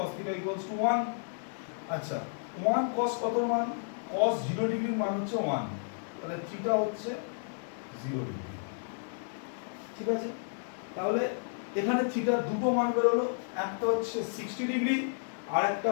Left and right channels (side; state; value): right; silent; digital silence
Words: থিটা ইকুয়ালস টু 1। আচ্ছা, 1 cos কত মান? cos 0 ডিগ্রির মান হচ্ছে 1, তাহলে থিটা হচ্ছে 0 ডিগ্রি। ঠিক আছে? তাহলে এখানে থিটার দুটো মান বের হলো, একটা হচ্ছে 60 ডিগ্রি আর একটা